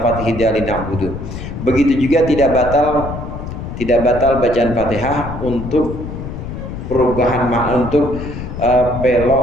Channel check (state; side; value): noise; left; rumble, 8 dB below the sound